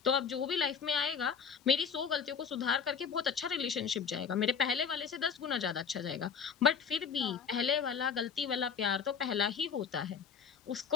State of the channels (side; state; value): right; quieter; 6.4 dB